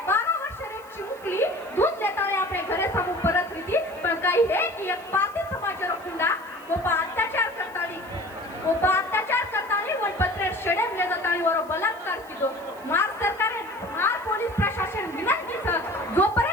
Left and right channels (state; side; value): noise; right; hiss, 25 dB below the sound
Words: 12 वर्षाने एक चिमुकली दूध लेताना આપણે ઘરે સામુ પરત રીતી પણ કઈ હે की एक पारधी समाजारो कुंडा ಒಬ್ಬ ಅತ್ಯಾಚಾರ करतानी वन पत्रे शेडेम ले जातानी वरो बलात्कार किदो. मार सरकारे मार पोलीस प्रशासन विनंतीचं